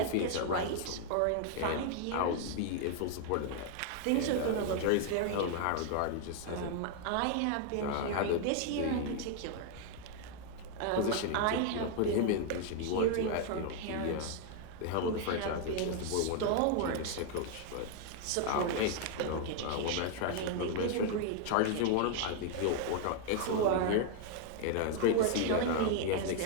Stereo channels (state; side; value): different; both; correlation 0.00